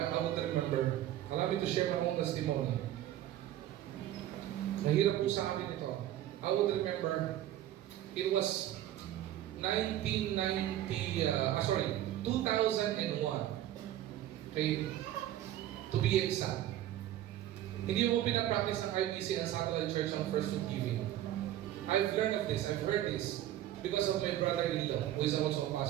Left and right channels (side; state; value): left; quieter; 12.9 dB